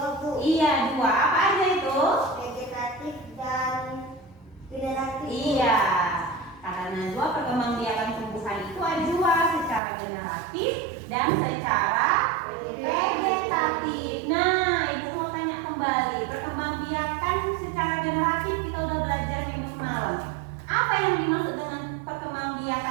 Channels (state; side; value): drops out; left; at 9.8 s